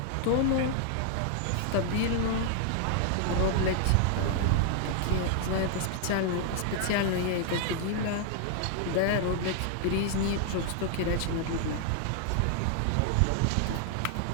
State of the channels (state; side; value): different; both; correlation 0.00